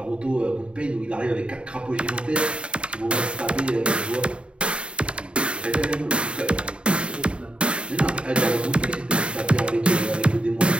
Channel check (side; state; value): left; late; 0.056 ms